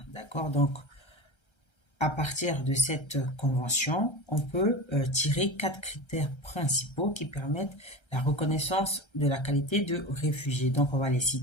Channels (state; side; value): late; right; 1.3 ms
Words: D'accord? Donc, à partir de cette convention, on peut tirer 4 critères principaux qui permettent la reconnaissance de la qualité de réfugié. Donc, on va les